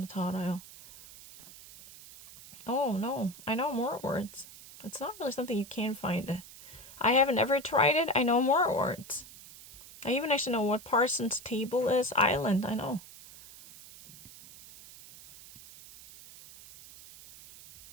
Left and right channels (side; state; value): right; noise; hiss, 18 dB below the sound